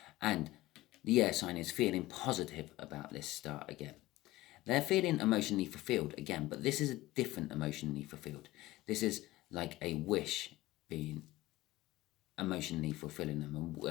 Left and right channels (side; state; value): right; quieter; 17.8 dB